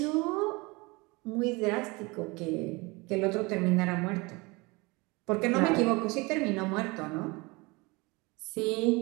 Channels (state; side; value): quieter; left; 25.5 dB